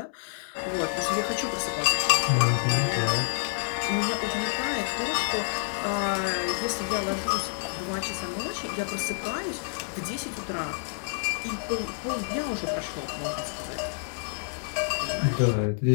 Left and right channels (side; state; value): right; silent; digital silence